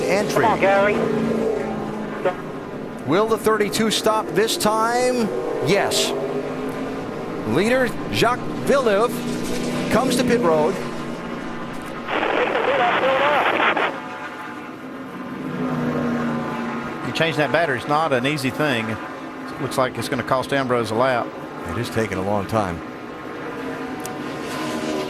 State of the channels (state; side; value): identical; both; correlation 1.00